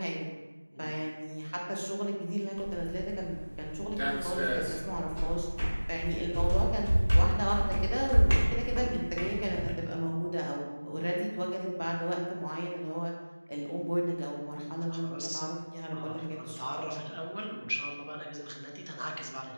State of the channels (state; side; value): inverted; both; correlation -1.00